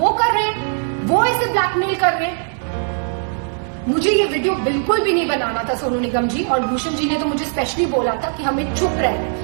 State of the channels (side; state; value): left; silent; 66 dB below the other